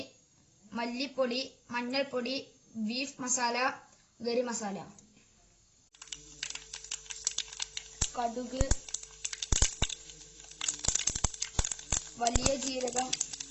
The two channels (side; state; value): both; identical; correlation 1.00